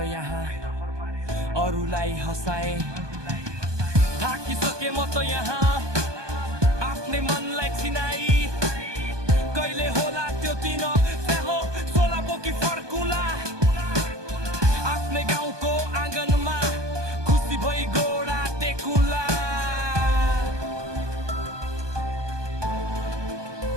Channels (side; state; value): left; late; 1.2 ms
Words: यहाँ अरूलाई हँसाए। थाकिसके म त यहाँ आफ्नै मनलाई चिनाई कहिले होला त्यो दिन स्याहो सोलाको कि फर्कुला आफ्नै गाउँको आँगनमा खुसी भई गोडा टेकुला।